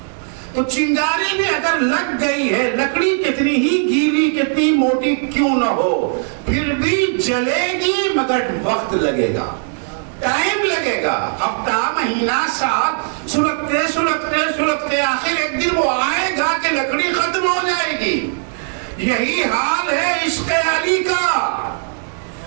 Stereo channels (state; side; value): silent; left; 67 dB below the other